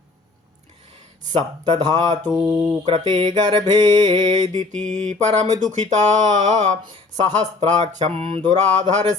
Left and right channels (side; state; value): right; quieter; 3.7 dB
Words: सप्तधातु कृते गर्भे दिति परम दुखिता सहस्राक्षं